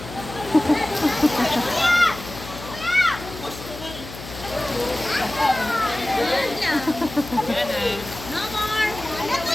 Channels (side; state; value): left; noise; hum, 13 dB below the sound